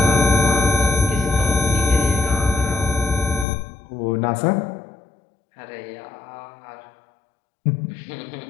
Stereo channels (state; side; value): drops out; right; at 3.5 s